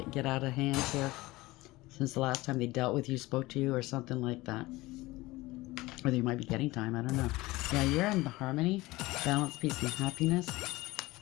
out of hand here since the last time they dealt with you, spoke to you, or something like that. Or they might be getting time, I don't know. Yeah, you're in harmony, balance, peace, and happiness.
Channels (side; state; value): right; quieter; 19.9 dB